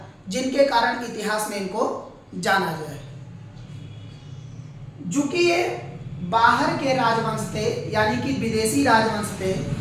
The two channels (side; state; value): both; identical; correlation 1.00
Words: जिनके कारण इतिहास में इनको जाना जाए। चूंकि ये बाहर के राजवंश थे, यानी कि विदेशी राजवंश थे,